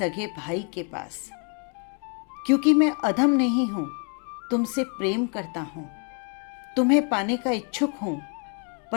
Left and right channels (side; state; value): right; quieter; 39.7 dB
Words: भाई के पास, क्योंकि मैं अधम नहीं हूं, तुमसे प्रेम करता हूं, तुम्हें पाने का इच्छुक हूं,